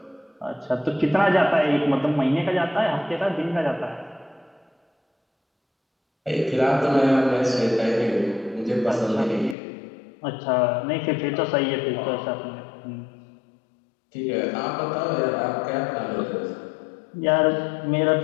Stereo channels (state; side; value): drops out; right; at 9.6 s